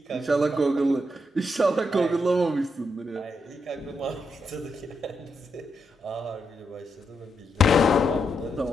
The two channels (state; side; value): normal; both; correlation 0.81